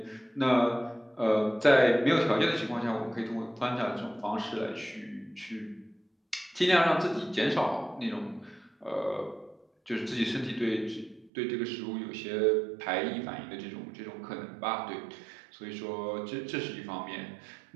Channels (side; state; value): left; drops out; at 11.3 s